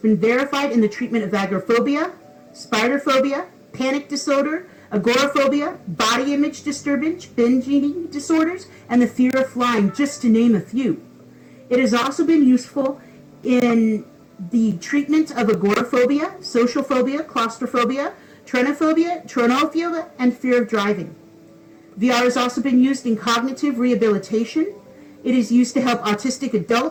verified in the treatment of agoraphobia, spider phobia, panic disorder, agoraphobia, body image disturbance, binge eating disorders, and the fear of flying, just to name a few. It has also been useful in the treatment of agoraphobia, social phobia, claustrophobia, tronophobia, and fear of driving. VR has also been used in cognitive rehabilitation. It is used to help autistic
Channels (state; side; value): identical; both; correlation 1.00